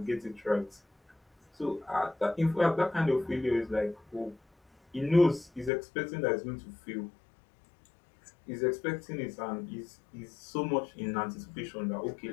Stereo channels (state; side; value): drops out; right; at 5.7 s